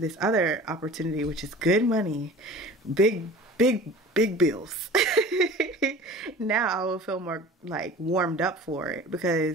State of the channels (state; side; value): normal; both; correlation 0.41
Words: other opportunity, which is good money, big bills, now I will feel more like warmed up for it,